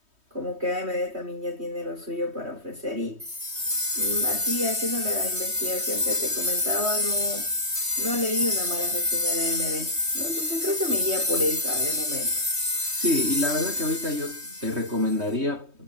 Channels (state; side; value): late; left; 3.2 ms